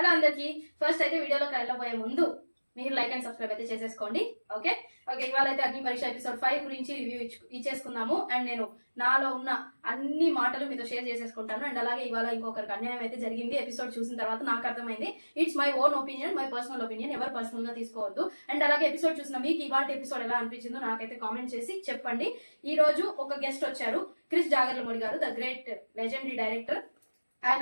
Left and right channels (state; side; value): inverted; both; correlation -1.00